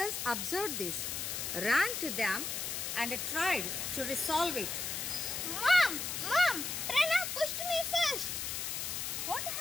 observed this, ran to them and tried to resolve it. Mom! Pranav pushed me first. What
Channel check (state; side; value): noise; left; hiss, 3 dB below the sound